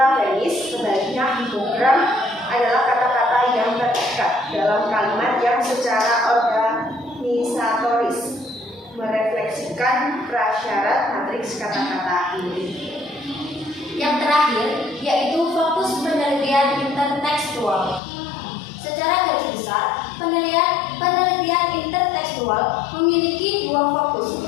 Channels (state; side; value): drops out; right; at 18.0 s